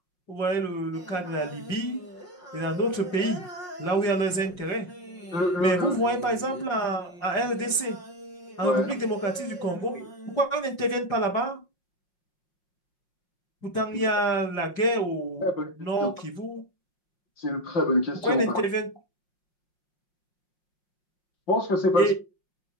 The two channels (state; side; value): late; right; 5.6 ms